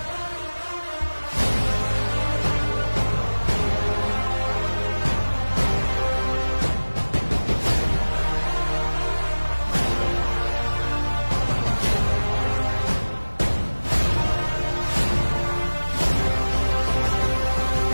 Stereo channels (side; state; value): both; inverted; correlation -1.00